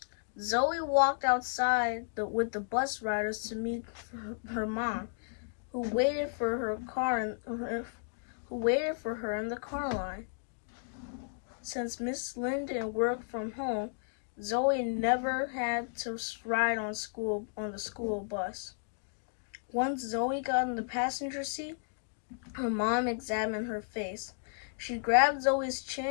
walked outside with the bus riders to meet her mom, who waited for her in the car line. Since Miss Lyndon worked from home, Zoe never had to ride on the school bus. Once Zoe got in the passenger seat, her mom examined her face. She grabbed Zoey's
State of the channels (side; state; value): right; silent; digital silence